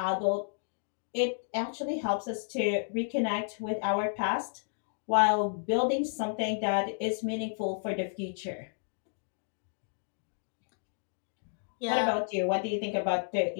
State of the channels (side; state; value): right; silent; digital silence